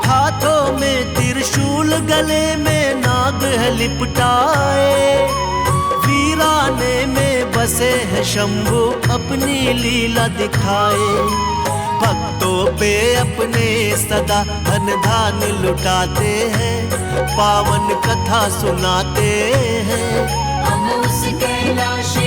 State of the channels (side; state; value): both; identical; correlation 1.00